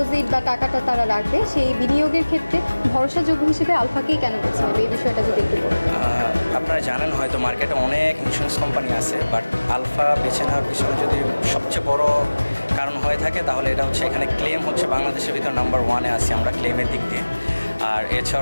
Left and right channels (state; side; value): inverted; both; correlation -1.00